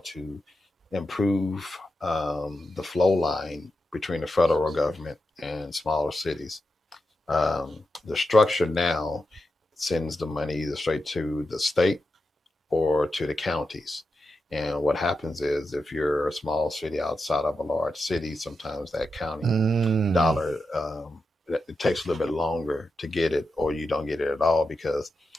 to improve the flow line between the federal government and smaller cities. The structure now sends the money either straight to the state or to the counties. And what happens is if you're a small city outside of a large city, sometimes that county dollar, it takes a little bit longer to get it, or you don't get it at all because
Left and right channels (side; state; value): both; normal; correlation 0.88